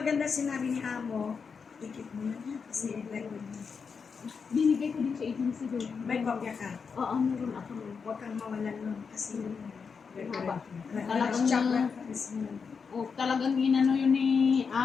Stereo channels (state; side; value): quieter; right; 5.7 dB